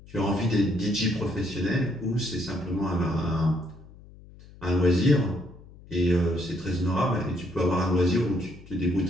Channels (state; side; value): noise; left; hum, 21 dB below the sound